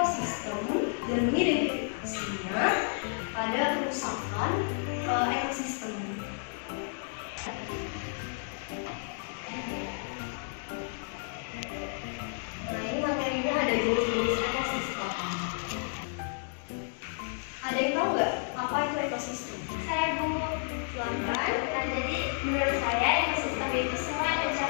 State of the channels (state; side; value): silent; right; 57 dB below the other